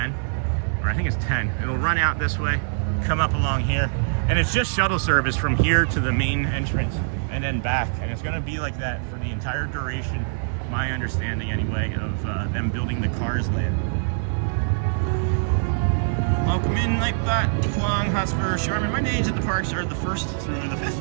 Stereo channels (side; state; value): left; silent; 63 dB below the other